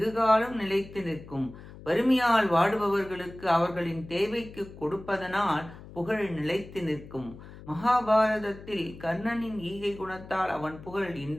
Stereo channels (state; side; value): noise; left; hum, 17 dB below the sound